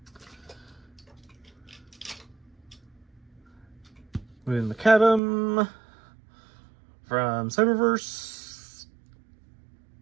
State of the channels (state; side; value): drops out; left; at 5.2 s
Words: With Macadam from Cyberverse.